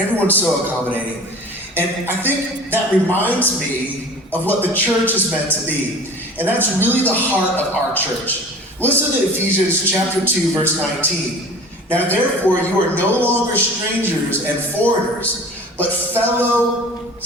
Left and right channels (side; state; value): both; normal; correlation 0.41